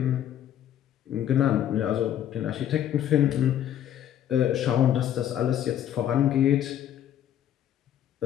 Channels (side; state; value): right; quieter; 10.8 dB